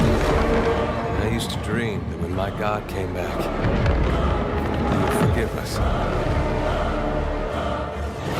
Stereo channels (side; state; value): both; identical; correlation 1.00